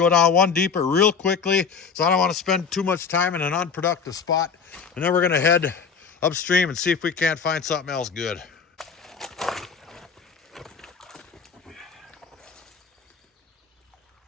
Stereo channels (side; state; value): right; quieter; 5.9 dB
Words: down one deeper real quickly, so I don't want to spend too much time in an unproductive spot. And then we're gonna head upstream and see if we can't find something else good.